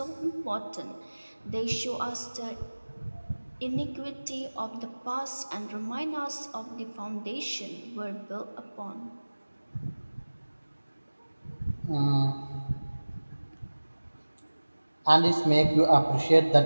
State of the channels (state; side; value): inverted; both; correlation -1.00